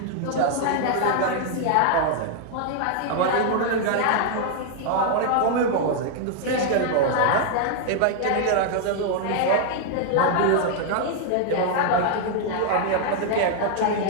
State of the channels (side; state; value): both; different; correlation 0.00